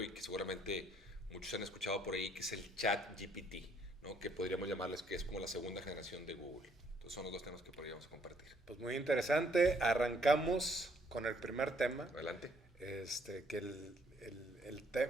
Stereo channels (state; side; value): normal; both; correlation 0.66